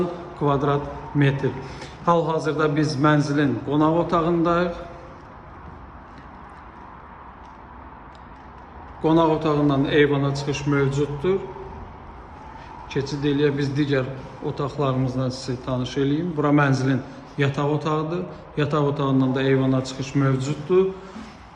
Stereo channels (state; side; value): identical; both; correlation 1.00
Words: kvadrat metr. Hal-hazırda biz mənzilin qonaq otağındayıq. Qonaq otağından eyvana çıxış mövcuddur. Keçid eləyə biz digər otaqlarımızdan sizi tanış eləyim. Bura mənzilin yataq otağıdır. Yataq otağından da eyvana çıxış mövcuddur.